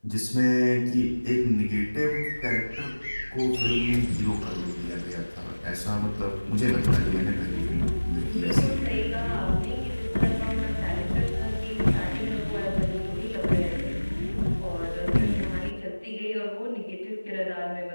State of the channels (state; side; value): inverted; both; correlation -1.00